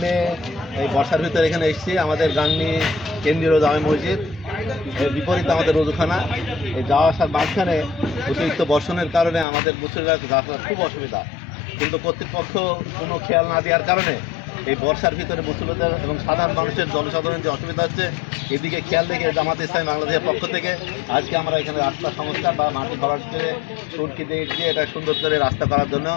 এই বর্ষার ভিতরে এখানে এসেছি। আমাদের গাংনী কেন্দ্রীয় জামে মসজিদ এর বিপরীতে আমাদের রোজুখানা। এই যাওয়া আসার মাঝখানে অতিরিক্ত বর্ষণের কারণে আমাদের মুসলিমরা যাওয়া খুব অসুবিধা, কিন্তু কর্তৃপক্ষ কোনো খেয়াল না দেওয়ার কারণে এই বর্ষার ভিতরে মুসলিমদের এবং সাধারণ মানুষের জনসাধারণের যে অসুবিধা হচ্ছে এদিকে খেয়াল রেখে জামাতে ইসলামী বাংলাদেশের পক্ষ থেকে আজকে আমরা এখানে রাস্তা সংস্কার বা মাটি ভরাট করে সুরকি দিয়ে এটা সুন্দর করে রাস্তা করার জন্য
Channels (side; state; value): right; drops out; at 9.5 s